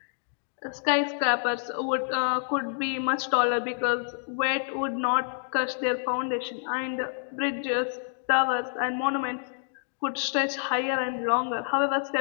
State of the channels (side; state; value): right; silent; digital silence